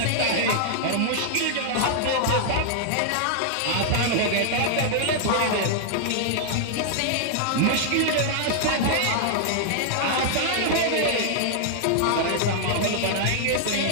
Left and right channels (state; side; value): different; both; correlation -0.01